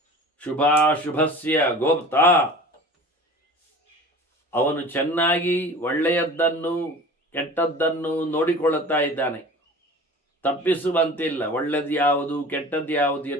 ಶುಭಾಶುಭಸ್ಯ ಗೋಪ್ತ, ಅವನು ಚೆನ್ನಾಗಿ ಒಳ್ಳೆಯದ್ದನ್ನು ಕೆಟ್ಟದ್ದನ್ನು ನೋಡಿಕೊಳ್ಳುತ್ತಾ ಇದ್ದಾನೆ. ತಪ್ಪಿಸುವಂತಿಲ್ಲ. ಒಳ್ಳೆಯದು ಯಾವುದು ಕೆಟ್ಟದ್ದು ಯಾವುದು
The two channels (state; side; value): normal; both; correlation 0.40